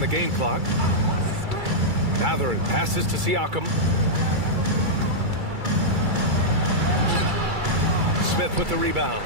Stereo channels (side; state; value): left; late; 2.3 ms